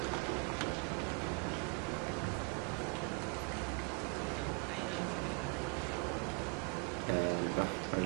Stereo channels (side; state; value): left; quieter; 31.3 dB